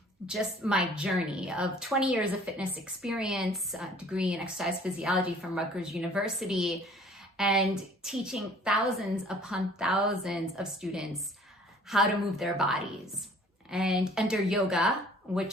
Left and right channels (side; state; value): both; normal; correlation 0.53